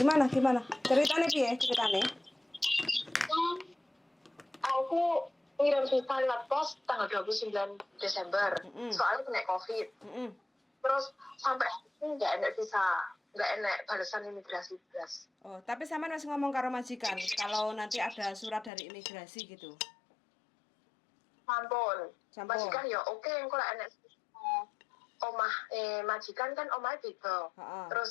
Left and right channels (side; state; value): right; drops out; at 18.7 s